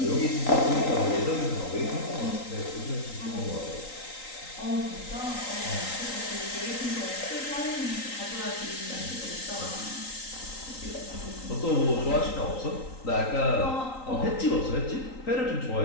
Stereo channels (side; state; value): right; late; 3.8 ms